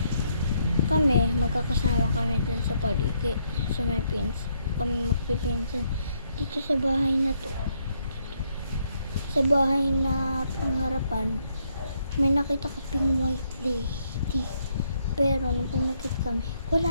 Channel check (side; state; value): both; inverted; correlation -0.74